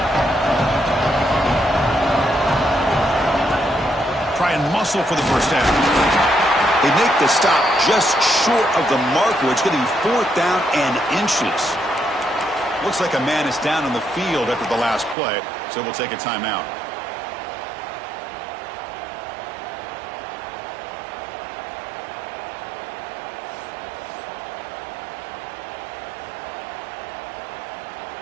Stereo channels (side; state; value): left; drops out; at 15.2 s